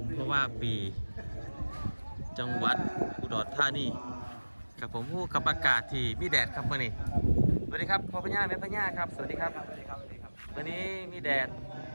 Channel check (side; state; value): both; inverted; correlation -1.00